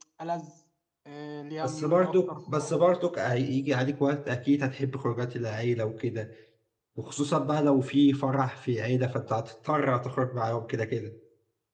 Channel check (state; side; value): identical; both; correlation 1.00